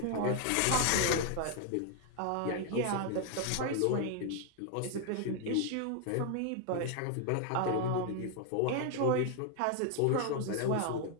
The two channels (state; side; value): different; both; correlation 0.00